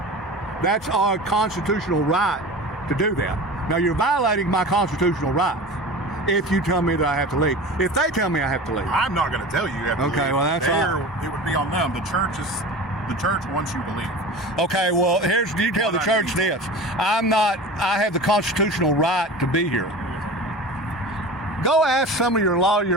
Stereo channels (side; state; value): both; normal; correlation 0.34